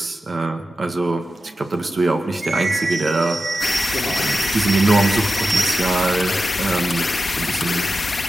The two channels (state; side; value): normal; both; correlation 0.91